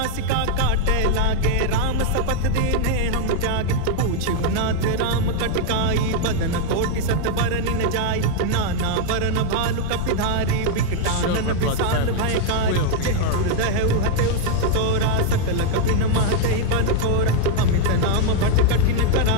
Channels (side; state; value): both; different; correlation 0.00